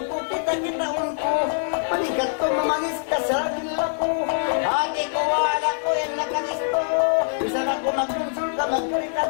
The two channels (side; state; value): right; silent; digital silence